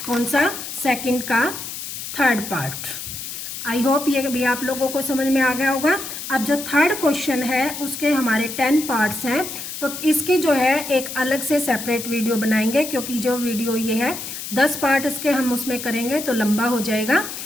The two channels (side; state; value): left; noise; hiss, 8 dB below the sound